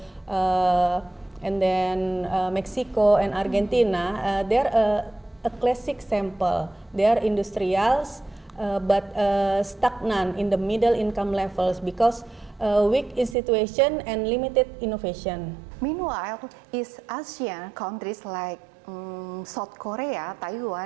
and then Mexico and Argentina. They're a classic sample. They are industrials, but stagnant in the middle income levels because weak institution and limited innovation. Meanwhile, East Asian countries like South Korea,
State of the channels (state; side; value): drops out; left; at 13.4 s